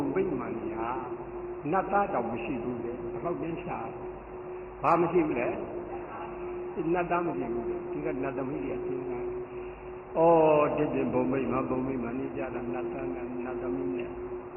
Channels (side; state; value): both; identical; correlation 1.00